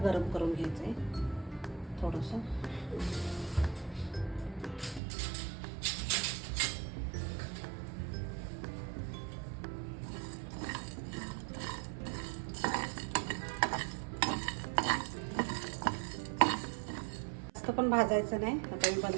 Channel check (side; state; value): left; drops out; at 5.0 s